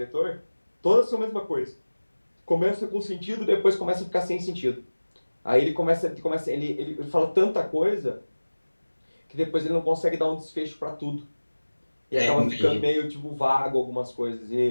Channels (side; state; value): both; inverted; correlation -1.00